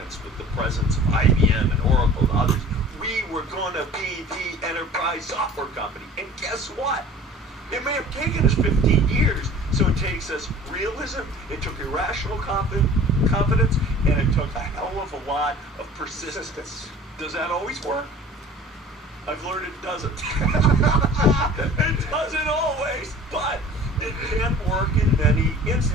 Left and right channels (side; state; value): both; normal; correlation 0.45